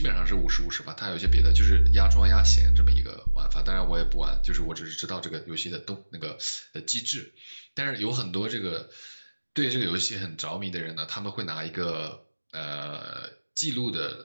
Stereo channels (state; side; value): inverted; both; correlation -1.00